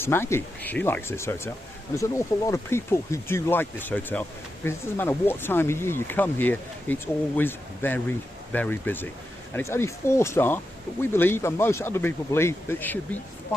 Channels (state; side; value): normal; both; correlation 0.88